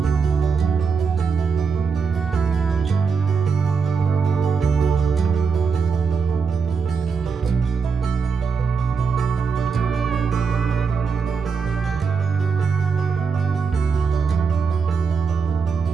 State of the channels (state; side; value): quieter; left; 5.5 dB